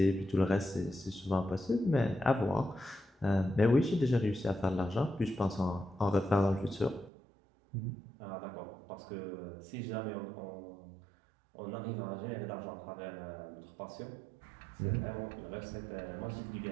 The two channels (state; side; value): drops out; left; at 7.1 s